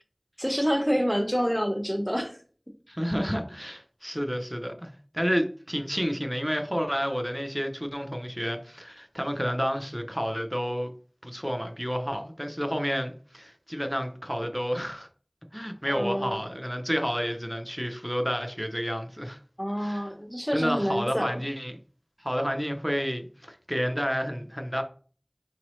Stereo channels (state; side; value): identical; both; correlation 1.00